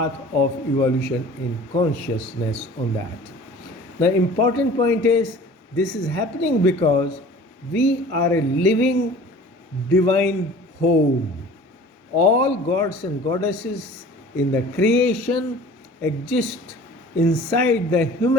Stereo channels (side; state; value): both; normal; correlation 0.45